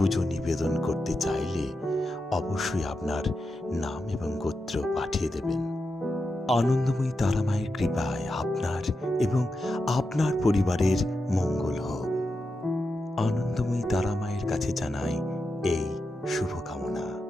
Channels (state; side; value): normal; both; correlation 0.88